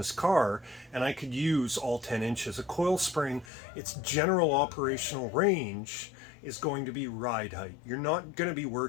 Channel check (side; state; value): right; drops out; at 3.5 s